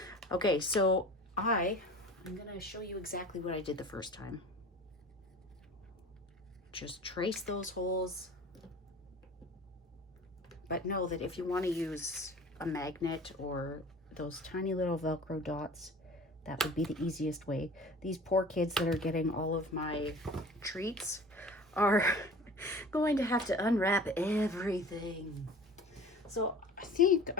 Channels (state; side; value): normal; both; correlation 0.42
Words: Okay, so I'm going to show you exactly what I did the first time. Just trace those holes. But know that if you want to use a magnet or those tiny little Velcro dots, that would be the easiest way. These poor kids that are getting all of my treats are going to have to unwrap everything. So I think